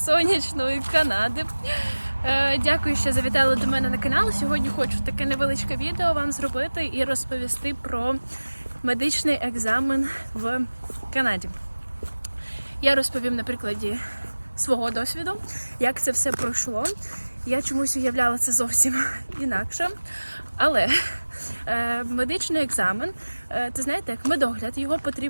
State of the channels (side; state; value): both; inverted; correlation -1.00